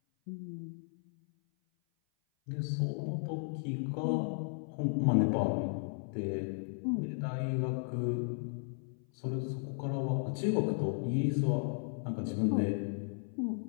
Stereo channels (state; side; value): silent; right; 55 dB below the other